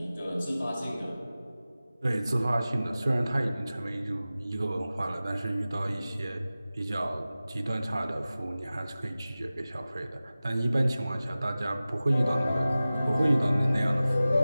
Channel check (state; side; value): inverted; both; correlation -0.96